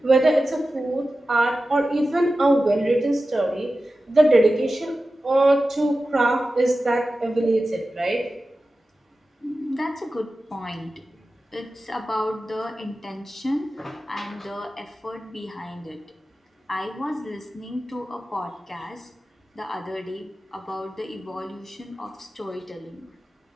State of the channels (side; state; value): both; normal; correlation 0.94